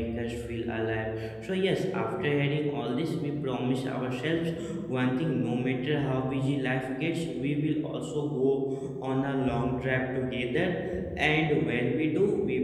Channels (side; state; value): both; identical; correlation 1.00